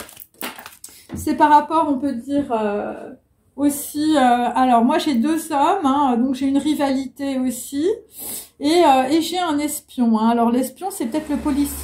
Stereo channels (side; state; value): both; identical; correlation 1.00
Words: c'est par rapport, on peut dire, aussi... alors, moi, j'ai 2 hommes, hein, donc j'ai une rivalité aussi. Et j'ai un espion. Hein. Alors, l'espion, c'est peut-être le